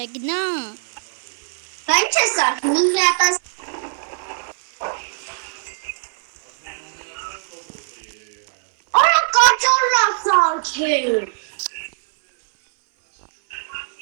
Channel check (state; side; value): silent; left; 65 dB below the other